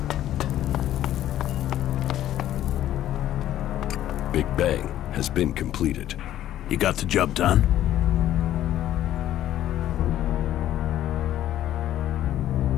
been completed. You got the job done?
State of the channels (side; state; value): right; quieter; 12.5 dB